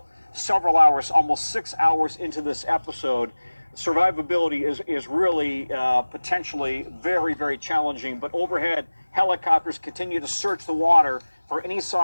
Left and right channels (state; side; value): inverted; both; correlation -1.00